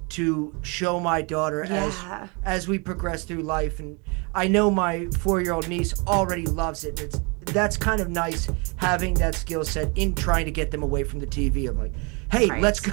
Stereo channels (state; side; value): quieter; left; 31.4 dB